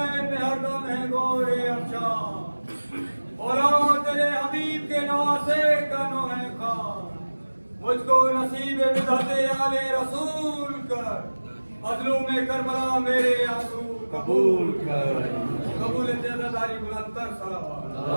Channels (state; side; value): inverted; both; correlation -1.00